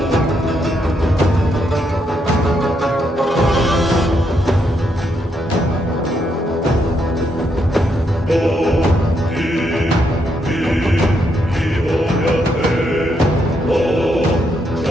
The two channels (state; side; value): normal; both; correlation 0.78